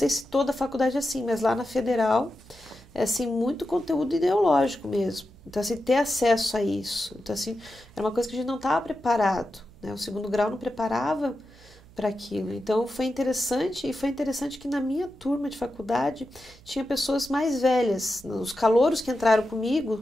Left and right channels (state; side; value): noise; right; hum, 24 dB below the sound